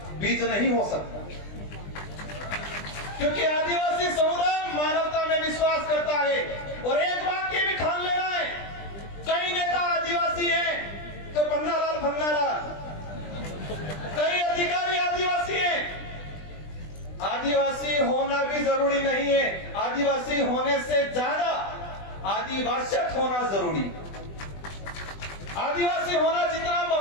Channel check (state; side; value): late; right; 20 ms